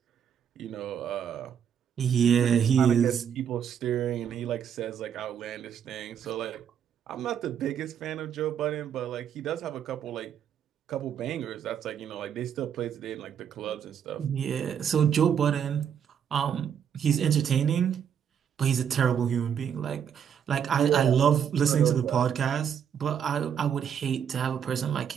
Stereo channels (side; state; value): left; quieter; 8.3 dB